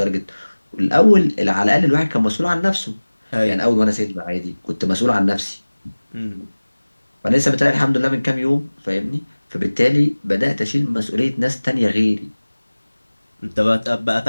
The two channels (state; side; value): inverted; both; correlation -1.00